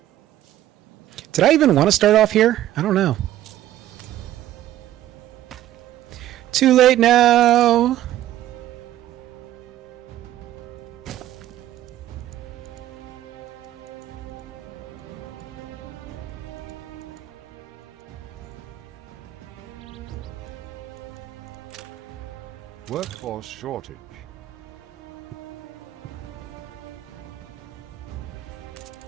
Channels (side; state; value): left; quieter; 13.2 dB